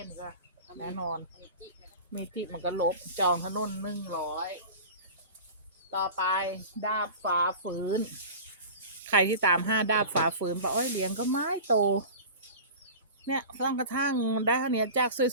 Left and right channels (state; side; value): inverted; both; correlation -0.35